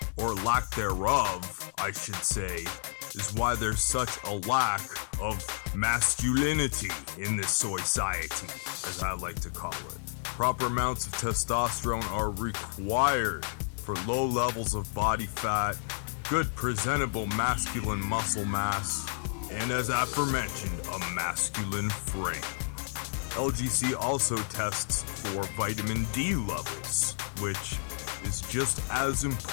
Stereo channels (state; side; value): silent; right; digital silence